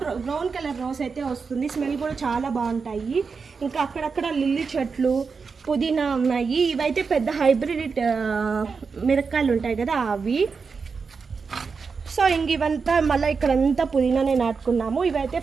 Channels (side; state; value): left; quieter; 5.2 dB